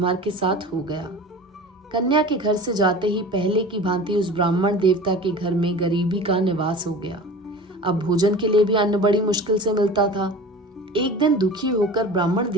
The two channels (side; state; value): both; normal; correlation 0.37